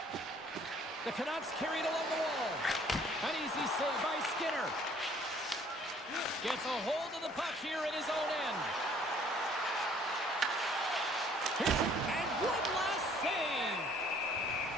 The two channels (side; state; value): both; normal; correlation 0.58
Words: The Canucks carry it along the wall. An easy save by Skinner. Gets a hold of the puck here in his own end. Here's it, and one last save.